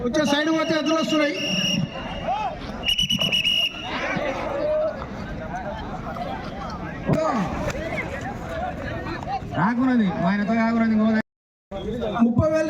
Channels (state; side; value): identical; both; correlation 1.00